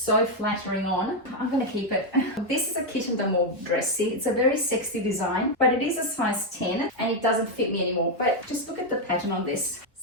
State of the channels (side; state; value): both; normal; correlation 0.03